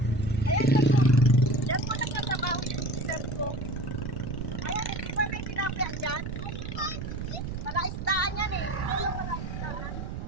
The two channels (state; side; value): noise; right; rumble, 6 dB below the sound